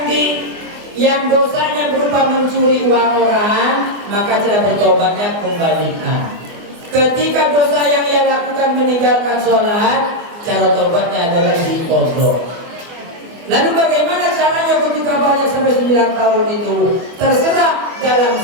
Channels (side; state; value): left; late; 24 ms